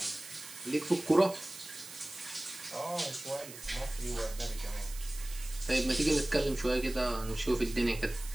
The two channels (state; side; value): noise; right; hiss, 14 dB below the sound